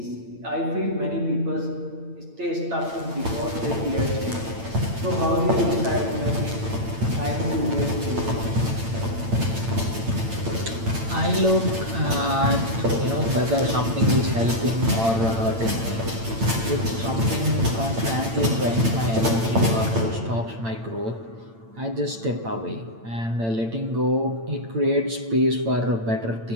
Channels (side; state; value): left; late; 8.8 ms